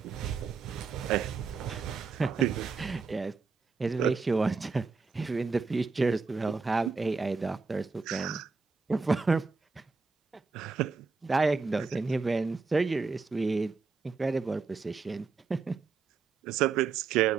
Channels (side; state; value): left; quieter; 4.7 dB